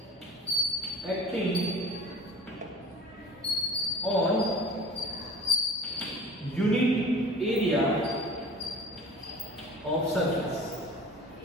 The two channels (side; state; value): both; normal; correlation 0.41